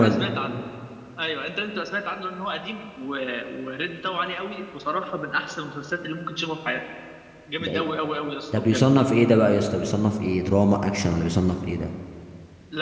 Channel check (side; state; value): both; identical; correlation 1.00